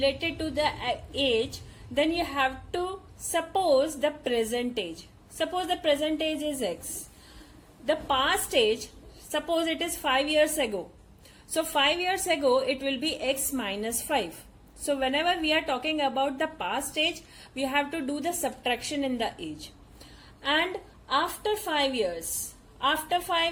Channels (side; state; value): both; identical; correlation 1.00